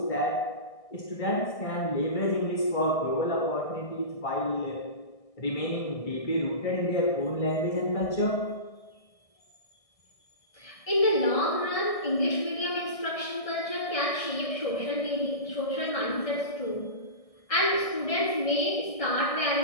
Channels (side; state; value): right; late; 1.6 ms